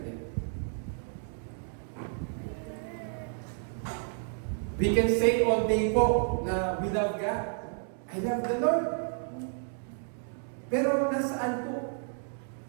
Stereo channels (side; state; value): left; silent; 57 dB below the other